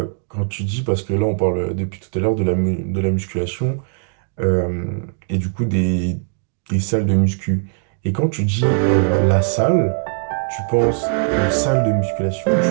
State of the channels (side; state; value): left; silent; digital silence